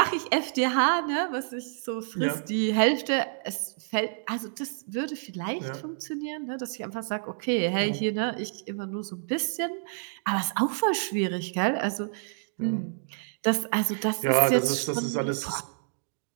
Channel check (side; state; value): left; silent; digital silence